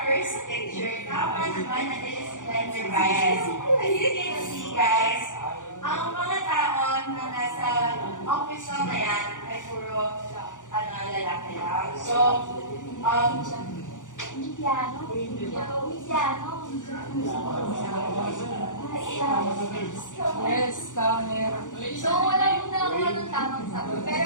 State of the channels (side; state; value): right; late; 0.87 ms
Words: first picture, dapat naman na this is gender bias. As you can see, guys, ang mga tao na nasa office na yan ay puro lalaki lang. So, Yes, camera. So, wala mo na ako ng tamang sagot.